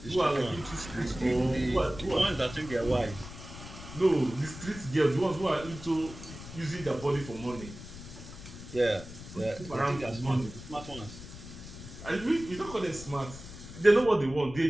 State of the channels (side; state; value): left; noise; rumble, 13 dB below the sound